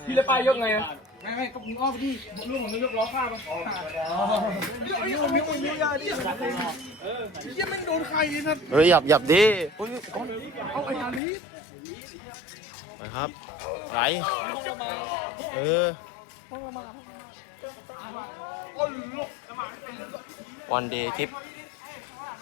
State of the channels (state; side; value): drops out; right; at 11.2 s